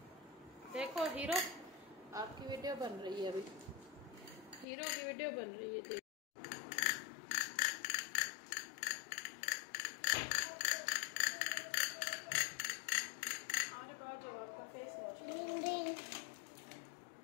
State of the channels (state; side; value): drops out; right; at 4.7 s